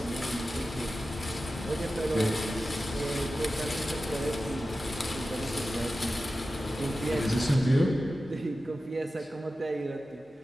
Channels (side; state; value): both; normal; correlation 0.94